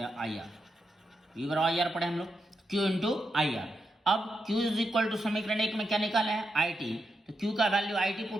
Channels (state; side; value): normal; both; correlation 0.85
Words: हैं, आई आर, वी बराबर आई आर पढ़े हम लोग, क्यू इंटू आई आर। अब Q इज इक्वल टू समीकरण 1 में क्या निकाला है, आई टी, तो Q का वैल्यू आई टी